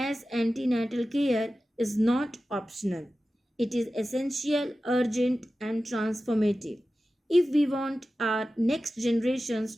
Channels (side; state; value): both; normal; correlation 0.94